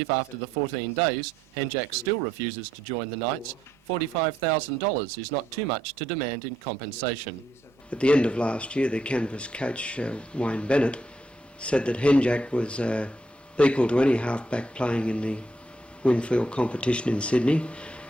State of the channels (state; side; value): normal; both; correlation 0.75